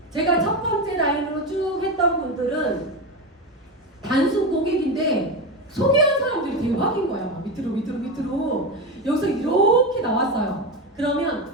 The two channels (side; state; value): both; normal; correlation 0.17